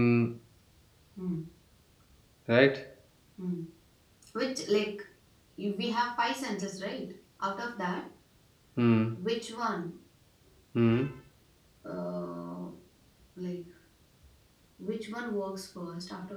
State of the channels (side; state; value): both; identical; correlation 1.00